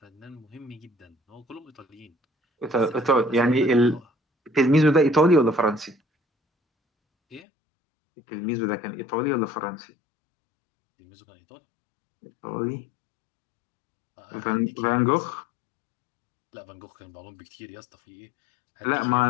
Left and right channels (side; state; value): right; drops out; at 7.4 s